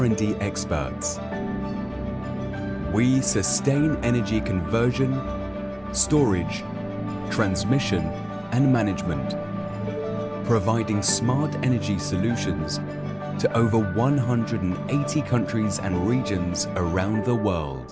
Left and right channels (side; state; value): left; noise; hum, 28 dB below the sound